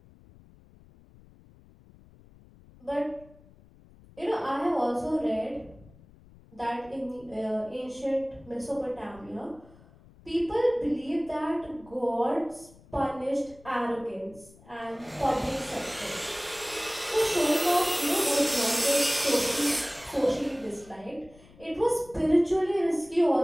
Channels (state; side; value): noise; left; rumble, 24 dB below the sound